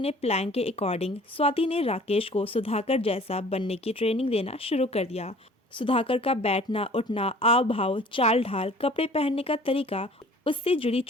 प्लान के अकॉर्डिंग स्वाति ने राकेश को सुधाकर जैसा बनने की ट्रेनिंग देना शुरू कर दिया। सुधाकर का बैठना उठना, आव भाव, चाल ढाल, कपड़े पहनने का तरीका, उससे जुड़ी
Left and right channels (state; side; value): normal; both; correlation 0.49